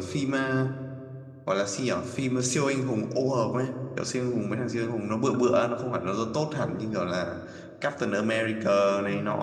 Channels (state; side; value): identical; both; correlation 1.00